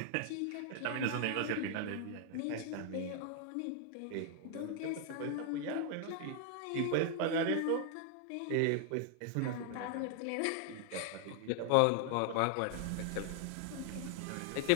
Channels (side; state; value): both; different; correlation 0.00